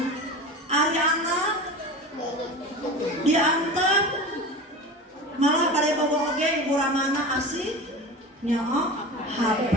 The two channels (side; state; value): both; normal; correlation 0.31